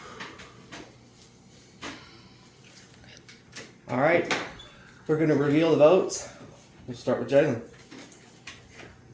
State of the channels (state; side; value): identical; both; correlation 1.00